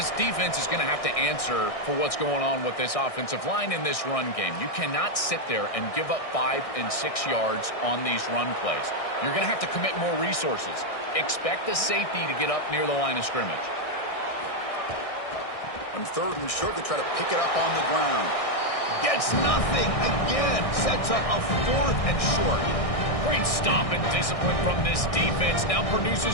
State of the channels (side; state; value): right; late; 1.6 ms